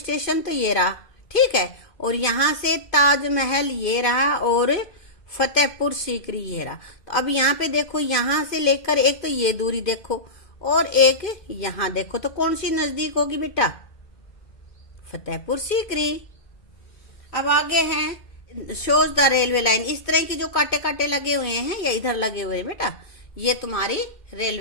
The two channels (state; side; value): late; right; 2.5 ms